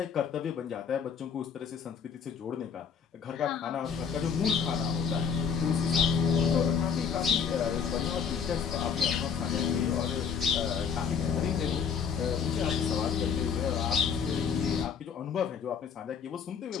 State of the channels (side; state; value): right; quieter; 6.8 dB